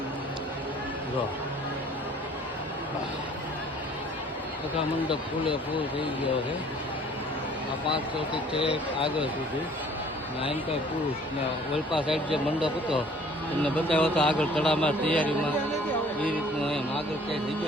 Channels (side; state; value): both; normal; correlation 0.54